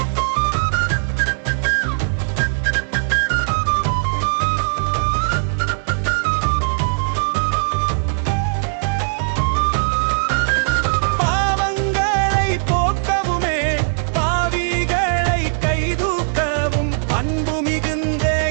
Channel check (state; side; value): silent; left; digital silence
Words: பாவங்களை போக்கவுமே பாவிகளை கைதூக்கவும் அன்பு மிகுந்த